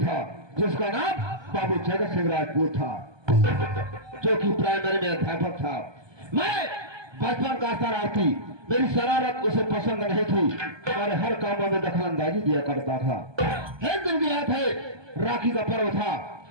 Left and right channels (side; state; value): left; late; 1.2 ms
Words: जिसका नाम बाबू जगत सिंह राजपूत था, जो कि प्राइमरी में अध्यापक था। मैं बचपन का शरारती, मेरी शरारत उसे पसंद नहीं थी और हर कामों में दखलंदाजी दिया करता था। एक दिन की बात है, राखी का पर्व था।